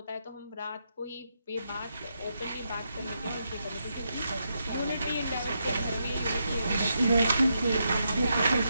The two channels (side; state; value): both; inverted; correlation -0.82